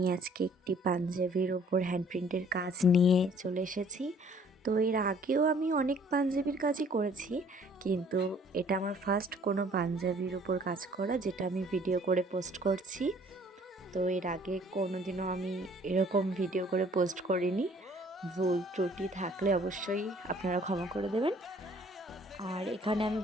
আজকে একটি পাঞ্জাবির ওপর হ্যান্ড প্রিন্টের কাজ নিয়ে চলে এসেছি। তো এর আগেও আমি অনেক পাঞ্জাবির কাজই করেছি, কিন্তু এটা আমার ফার্স্ট কোনো পাঞ্জাবির ওপর কাজ করা, যেটা আমি ভিডিও করে পোস্ট করছি। তো এর আগে কোনো দিনও আমি এরকম ভিডিও করে পোস্ট করিনি। ভুল ত্রুটি থাকলে অবশ্যই আপনারা ক্ষমা করে দেবেন। আর এখানে আমি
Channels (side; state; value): both; normal; correlation 0.57